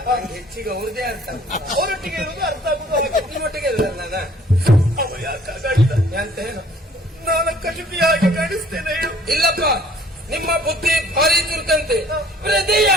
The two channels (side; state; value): both; normal; correlation 0.56